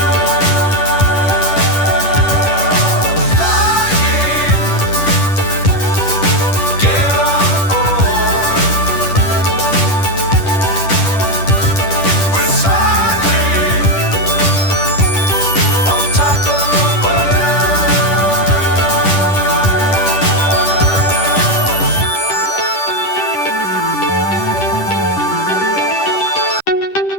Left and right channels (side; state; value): right; late; 10 ms